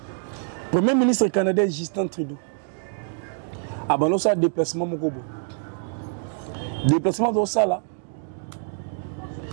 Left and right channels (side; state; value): left; silent; 62 dB below the other